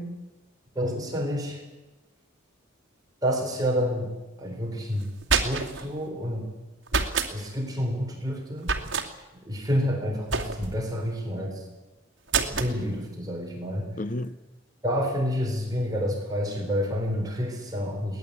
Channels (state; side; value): normal; both; correlation 0.49